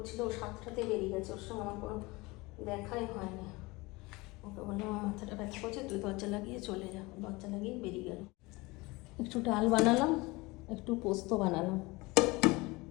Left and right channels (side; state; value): right; quieter; 23.3 dB